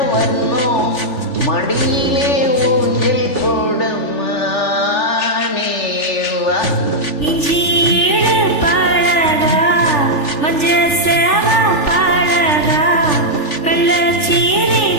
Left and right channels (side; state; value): right; late; 3.4 ms